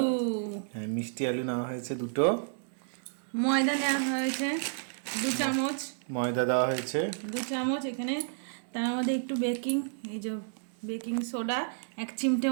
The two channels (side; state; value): left; silent; digital silence